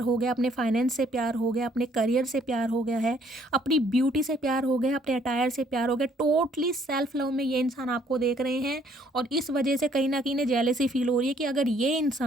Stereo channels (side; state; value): both; normal; correlation 0.64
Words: हो गया, अपने फाइनेंस से प्यार हो गया, अपने करियर से प्यार हो गया है, अपनी ब्यूटी से प्यार हो गया, अपने अटायर से प्यार हो गया। टोटली सेल्फ लव में ये इंसान आपको देख रहे हैं और इस वजह से कहीं ना कहीं जेलसी फील हो रही है कि अगर ये